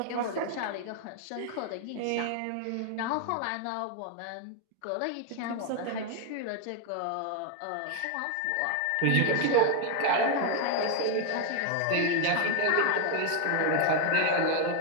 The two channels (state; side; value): different; both; correlation 0.01